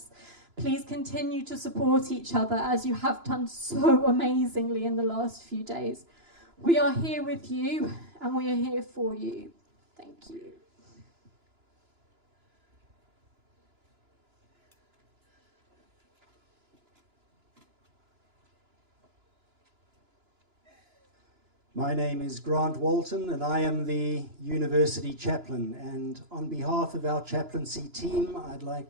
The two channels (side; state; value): left; late; 2.9 ms